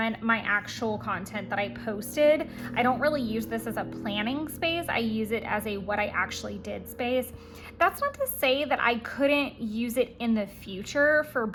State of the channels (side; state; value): both; identical; correlation 1.00